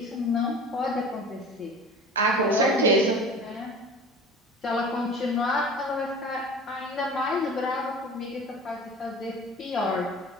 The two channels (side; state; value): both; normal; correlation 0.39